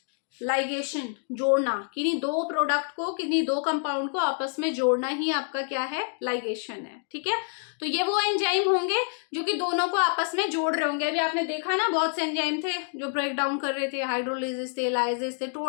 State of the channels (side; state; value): right; silent; 60 dB below the other